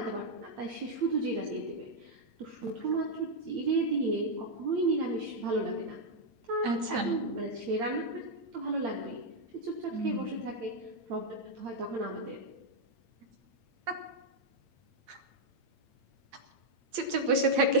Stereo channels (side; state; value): left; late; 8.7 ms